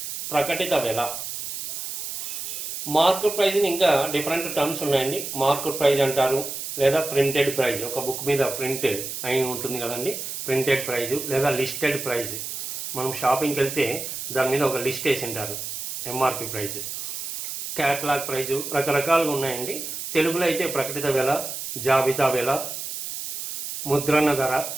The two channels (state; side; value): noise; right; hiss, 6 dB below the sound